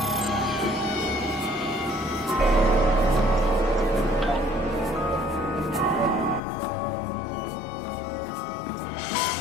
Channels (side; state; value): right; drops out; at 6.4 s